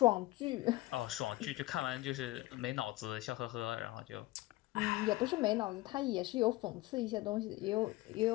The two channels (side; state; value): right; quieter; 18.8 dB